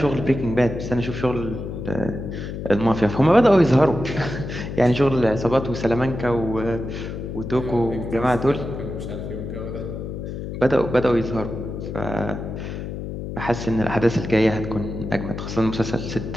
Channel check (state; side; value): noise; left; hum, 7 dB below the sound